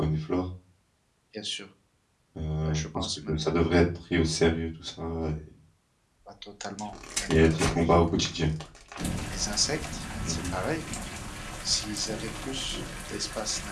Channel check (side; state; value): both; identical; correlation 1.00